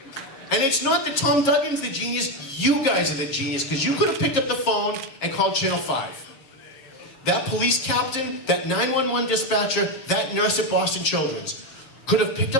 And it's not that Tom Duggan's the genius, you guys are the genius, because you could have picked up the phone and called Channel 5. That police captain, that 911 dispatcher, that nurse at Boston Children's could have picked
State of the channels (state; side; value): late; right; 7.4 ms